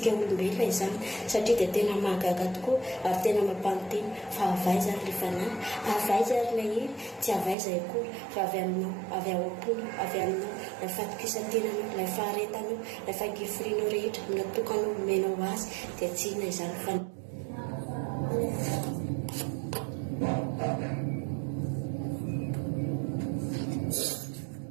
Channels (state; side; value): drops out; left; at 7.6 s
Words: olombelona izany satria dia tena mahagaga tokoa ary tena mampanonteny fa avaiza ary ilay fanahy, avaiza ary ilay hery, tsy avaiza akory fa avy aminao, avy ao am-pony, avy aminao ilay fatokisan-tenanao, ilay faharetanao, ilay fangiforianao rehetra natokanao menao azy dia tsy inona izany fa